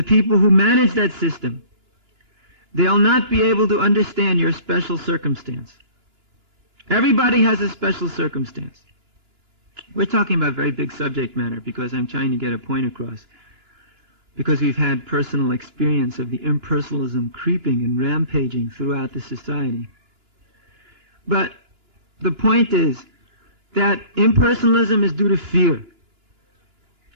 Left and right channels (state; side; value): late; left; 2.9 ms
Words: people who manage that system, they'll not be able to understand your special circumstance. Everybody has a special circumstance. We're talking about very big subject matter because I'm trying to get a point across. Because we've had personal experience of the impersonalism creeping and rampaging throughout the society. But the point is that impersonalism is due to fear.